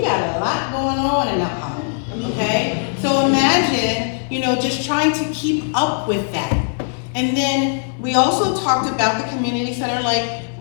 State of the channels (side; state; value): right; silent; digital silence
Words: a lot going on in Mount Holly, okay? So imagine, just trying to keep up with that. And then we also talked about the community center, like